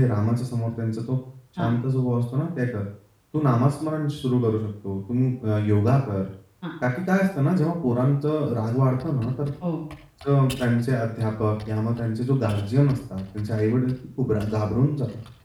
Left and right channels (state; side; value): identical; both; correlation 1.00